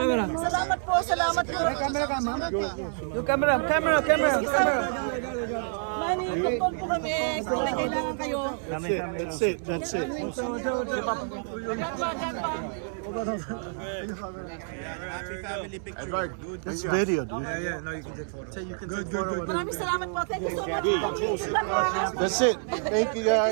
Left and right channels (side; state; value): left; silent; 59 dB below the other